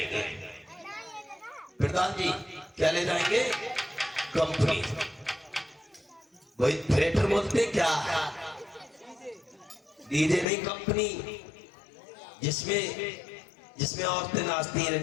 प्रधान जी क्या ले जाएंगे? कंपनी। वही थिएटर बोलते क्या? डीजे नहीं, कंपनी, जिसमें औरतें नाचती हैं,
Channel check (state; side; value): drops out; right; at 10.5 s